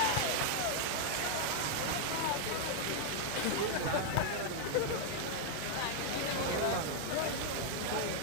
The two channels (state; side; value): different; both; correlation 0.00